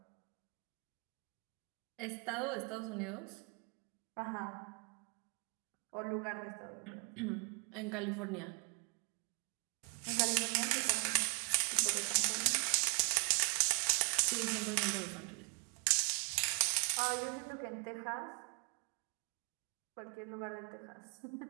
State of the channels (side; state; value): left; quieter; 35.7 dB